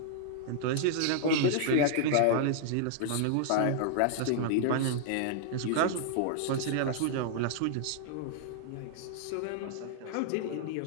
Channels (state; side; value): different; both; correlation -0.01